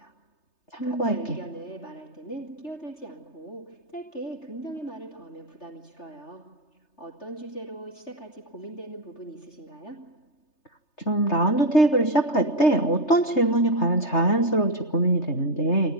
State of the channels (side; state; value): right; late; 3.3 ms